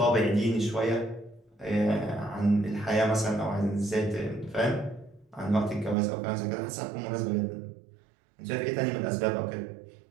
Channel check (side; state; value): left; drops out; at 6.0 s